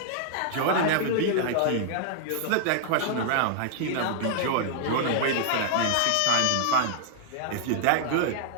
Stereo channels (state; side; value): different; both; correlation -0.01